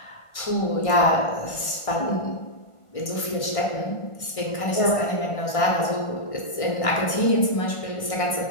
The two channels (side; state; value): right; late; 1.6 ms